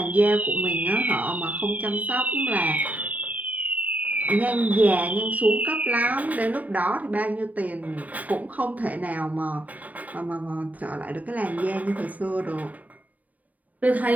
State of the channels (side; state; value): left; late; 0.073 ms